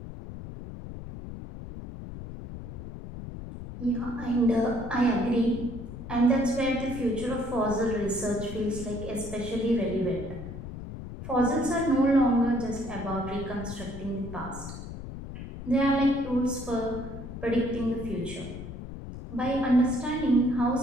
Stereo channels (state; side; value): noise; left; rumble, 10 dB below the sound